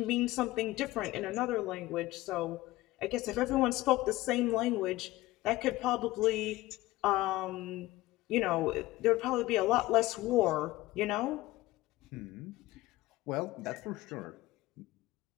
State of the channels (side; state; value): right; quieter; 18.0 dB